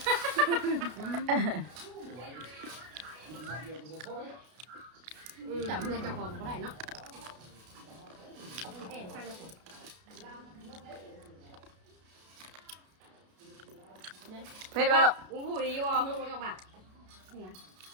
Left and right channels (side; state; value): left; late; 32 ms